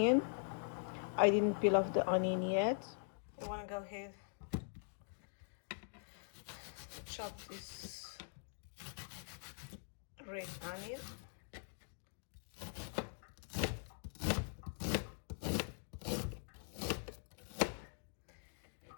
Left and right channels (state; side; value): silent; right; digital silence